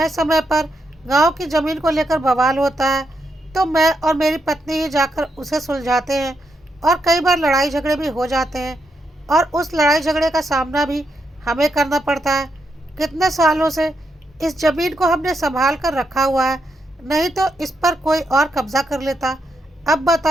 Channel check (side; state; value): both; normal; correlation 0.81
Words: समय पर गांव की ज़मीन को लेकर बवाल होता है, तो मैं और मेरी पत्नी ही जाकर उसे सुलझाते हैं। और कई बार लड़ाई झगड़े भी हो जाते हैं और उस लड़ाई झगड़े का सामना भी हमें करना पड़ता है। कितने सालों से इस ज़मीन को हमने संभाल कर रखा हुआ है, नहीं तो इस पर कोई और कब्जा कर लेता। अब